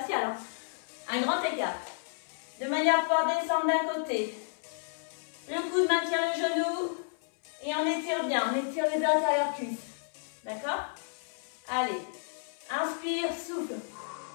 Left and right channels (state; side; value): silent; right; 57 dB below the other